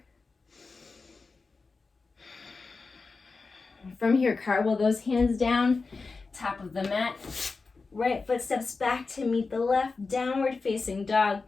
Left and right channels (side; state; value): right; quieter; 4.2 dB